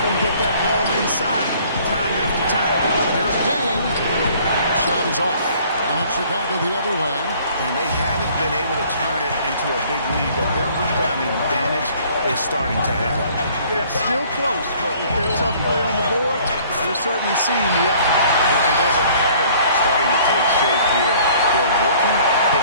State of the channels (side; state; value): both; inverted; correlation -0.56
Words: get that ball inside time after time. Here's Dang. Shot is off. And it's Chicago the other way. And they haven't been able to turn it into a big lead, but their rebounding advantage is starting to add up. Yeah, still close, but with their tough play on the board, you're certainly seeing the effort. And there's a pattern starting to take shape here. They're working